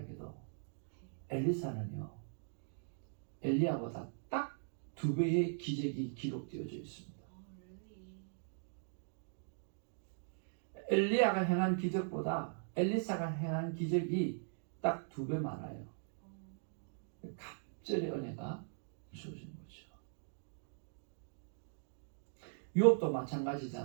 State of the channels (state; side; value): silent; left; digital silence